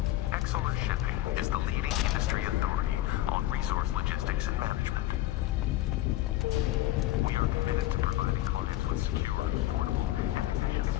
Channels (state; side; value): quieter; right; 15.2 dB